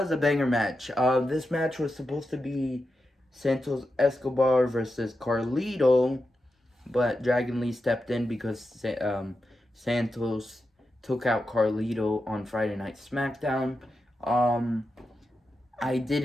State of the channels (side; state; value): both; normal; correlation 0.89